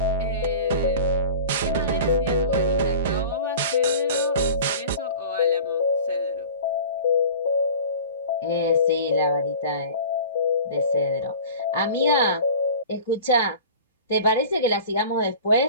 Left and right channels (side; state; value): both; inverted; correlation -0.40